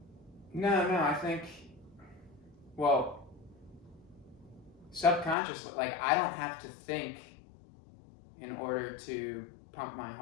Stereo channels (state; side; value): drops out; right; at 5.4 s